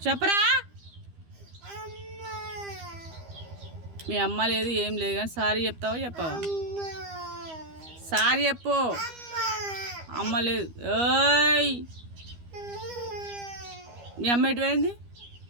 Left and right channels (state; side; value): late; left; 12 ms